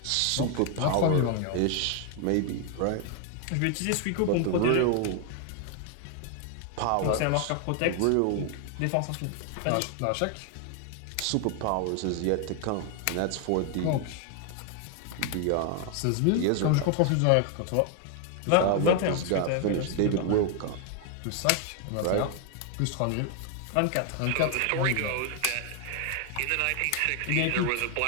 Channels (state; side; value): different; both; correlation 0.01